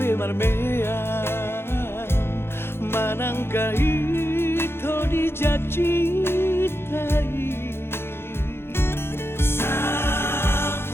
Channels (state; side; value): late; right; 0.11 ms